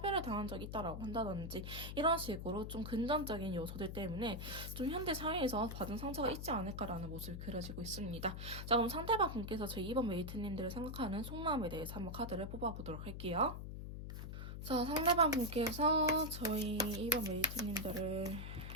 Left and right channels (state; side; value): noise; left; hum, 7 dB below the sound